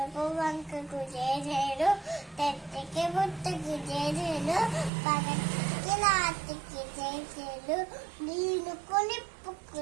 వంకకు జేజేలు తెట్టికి బుట్టకి జేజేలు పగటికి రాత్రికి జేజేలు నీళ్ళకు నిప్పుకు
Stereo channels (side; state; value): left; drops out; at 4.9 s